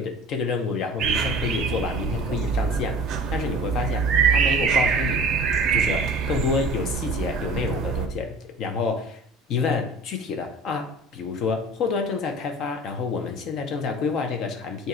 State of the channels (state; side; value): normal; both; correlation 0.42